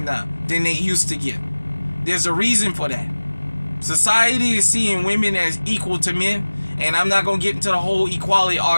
now than they used to get. There's a reason for that. Society is seeing women as equal to men, and I'm not going to get into the whole equality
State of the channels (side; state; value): both; inverted; correlation -1.00